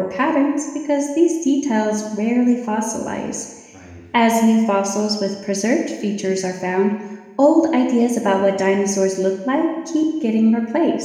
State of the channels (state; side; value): identical; both; correlation 1.00